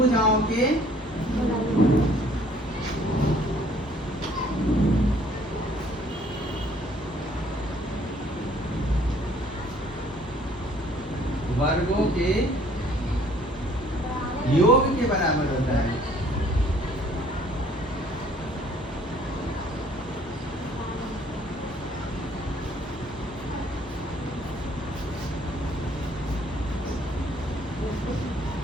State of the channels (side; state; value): both; normal; correlation 0.59